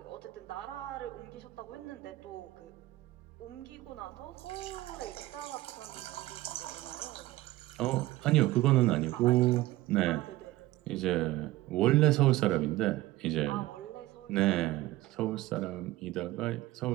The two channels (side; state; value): left; quieter; 17.5 dB